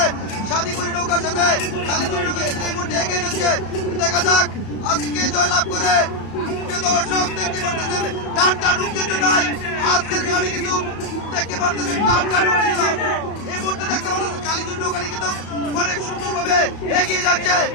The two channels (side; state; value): right; late; 35 ms